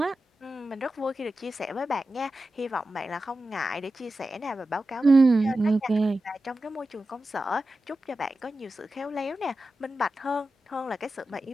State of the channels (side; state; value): both; normal; correlation 0.92